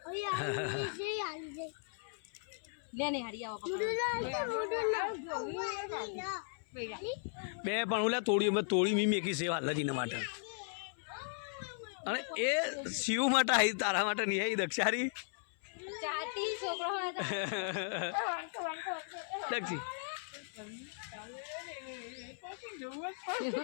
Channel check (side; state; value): right; silent; 53 dB below the other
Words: ગઈ લે ને હારી આવો બે પણ ઓલા તોડી મી મેકી સેવા લજીને માટે અને એ શિવ માટે આવી તારા માટે નહીં આવી દક્ષારી ચાટી છોકરો દક્ષી